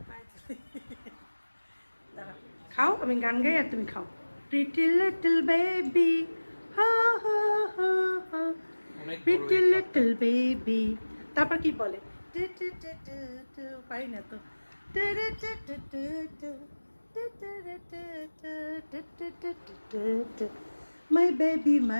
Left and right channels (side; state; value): both; inverted; correlation -1.00